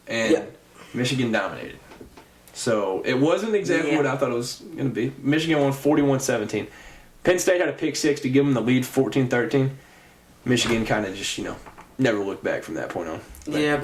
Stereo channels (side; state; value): both; identical; correlation 1.00